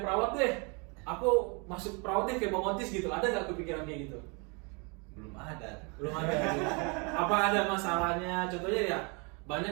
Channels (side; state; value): left; quieter; 32.3 dB